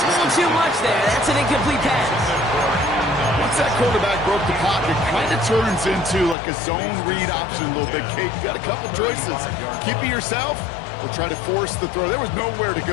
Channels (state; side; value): drops out; right; at 6.4 s